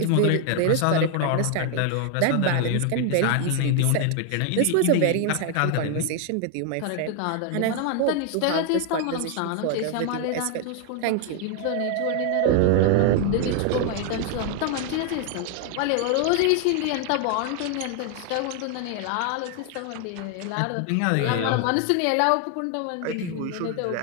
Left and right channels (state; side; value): different; both; correlation 0.00